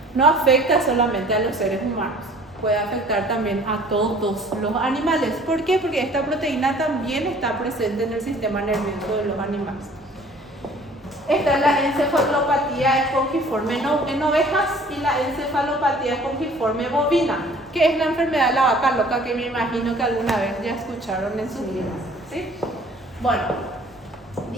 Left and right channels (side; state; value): both; normal; correlation 0.52